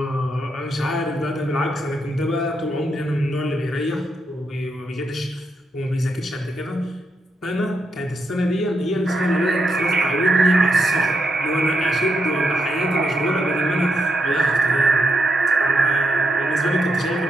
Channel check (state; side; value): normal; both; correlation 0.81